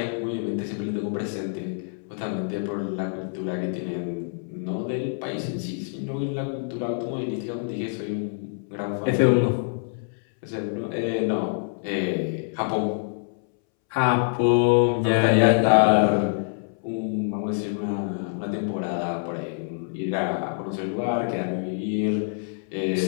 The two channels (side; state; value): right; silent; 61 dB below the other